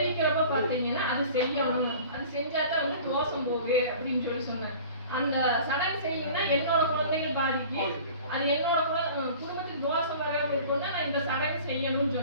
பாத்தீங்கன்னா அது செய்யணும், அது செஞ்சாதான் வந்து தோஷம் போகு அப்படின்னு சொல்லி சொன்னேன். அந்த சடங்கு செய்யணும்னா என்னோட குழந்தைகள் பாதிக்கு, அது என்னோட குடும்பத்துக்கு தோஷம் வராம இருக்கும்னா நான் இந்த சடங்கு செய்யணும்னு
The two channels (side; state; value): both; inverted; correlation -0.43